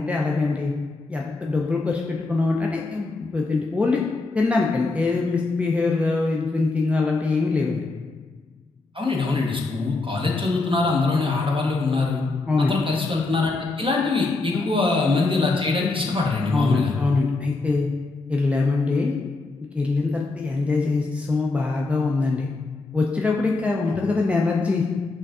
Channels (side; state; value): right; quieter; 3.4 dB